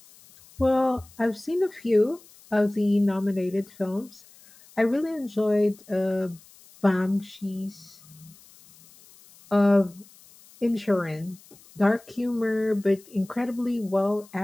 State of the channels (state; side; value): noise; left; hiss, 25 dB below the sound